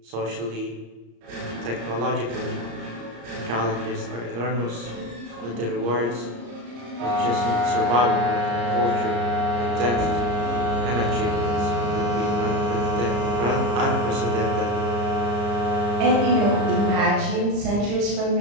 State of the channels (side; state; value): left; late; 34 ms